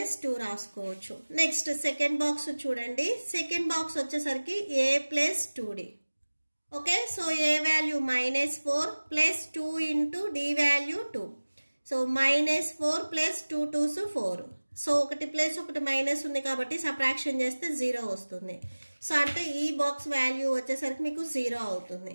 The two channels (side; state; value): both; inverted; correlation -1.00